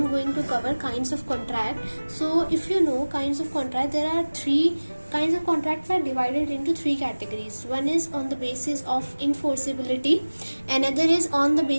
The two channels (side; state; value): both; inverted; correlation -1.00